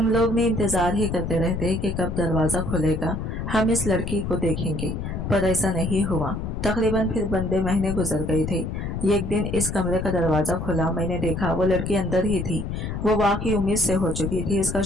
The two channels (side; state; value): left; noise; rumble, 4 dB below the sound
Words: लोग ने इंतजार ही करते रहते कि कब दरवाजा खुलेगा, हम इस लड़की को देखेंगे, पर ऐसा नहीं हुआ। तकरीबन फिर बंदे महीने गुजर गए थे। एक दिन इस कमरे का दरवाजा खुला, मैंने देखा वो लड़की अंदर ही थी। वो वाकई उम्मीद से हो चुकी थी, इसका